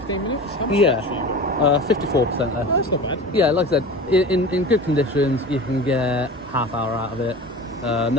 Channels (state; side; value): normal; both; correlation 0.34